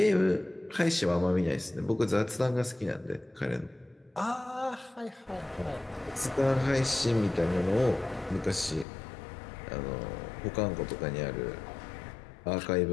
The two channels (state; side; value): drops out; right; at 8.8 s